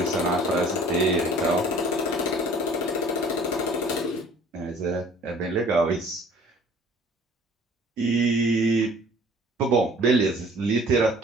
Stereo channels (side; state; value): both; normal; correlation 0.52